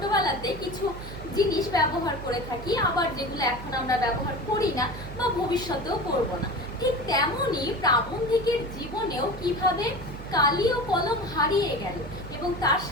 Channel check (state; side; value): noise; right; hum, 12 dB below the sound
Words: কিছু জিনিস ব্যবহার করে থাকি, আবার যেগুলো এখন আমরা ব্যবহার করি না বা ভবিষ্যতেও করব না। ঠিক তেমনই প্রাবন্ধিকের জীবনেও কিভাবে কালি ও কলম হারিয়ে গেল এবং তার